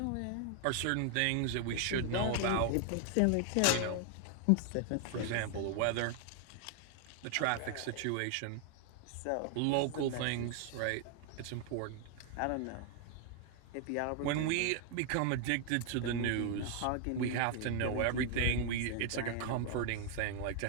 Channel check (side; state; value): both; different; correlation 0.00